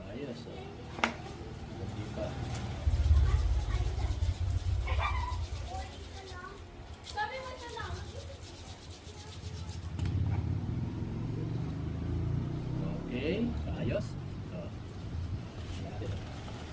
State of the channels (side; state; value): both; identical; correlation 1.00